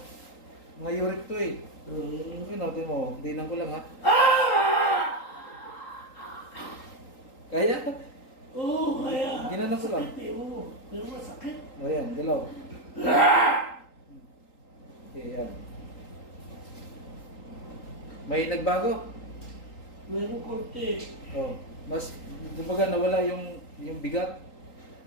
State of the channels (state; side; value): late; right; 3.8 ms